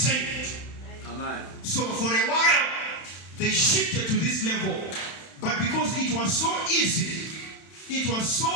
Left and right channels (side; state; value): right; late; 31 ms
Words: Amen. So for a while, they shifted to this level. But because it was so easy